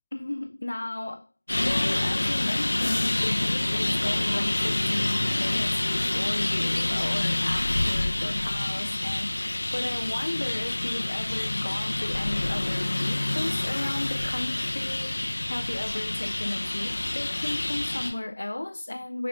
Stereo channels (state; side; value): inverted; both; correlation -1.00